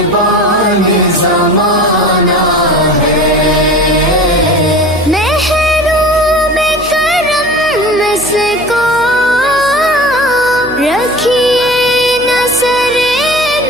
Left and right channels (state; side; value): noise; right; hum, 20 dB below the sound